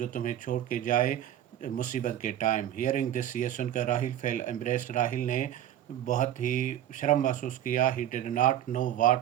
तुम्हें छोड़ के जाए मुसीबत के टाइम। हियरिंग दिस, ये सुनकर राहिल फेल एम्ब्रेस्ड, राहिल ने बहुत ही शर्म महसूस किया। He did not know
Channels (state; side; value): quieter; left; 11.5 dB